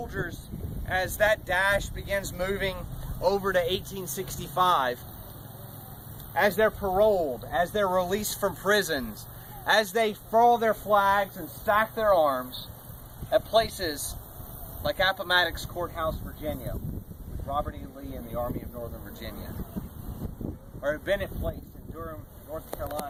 as that dash begins moving over to 1865, as they're paroled, as they're released from prisons, as they furl their flags and stack their arms at places like Appomattox Courthouse, Virginia, with Robert E. Lee and the Army of Northern Virginia, or at Bennett Place in Durham, North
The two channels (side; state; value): both; identical; correlation 1.00